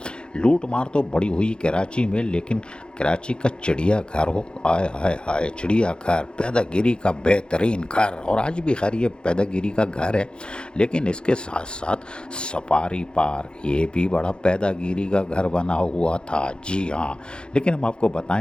लूट मार तो बड़ी हुई कराची में, लेकिन कराची का चिड़िया घर हो, आय हाय हाय, चिड़िया घर, पैदागिरी का बेहतरीन घर। और आज भी खैर ये पैदागिरी का घर है, लेकिन इसके साथ साथ सफारी पार्क ये भी बड़ा पैदागिरी का घर बना हुआ था। जी हाँ, लेकिन हम आपको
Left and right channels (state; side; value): late; right; 0.051 ms